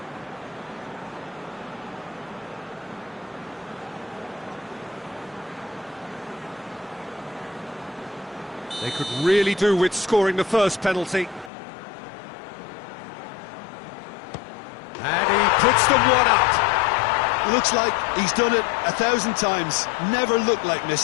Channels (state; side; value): drops out; right; at 11.5 s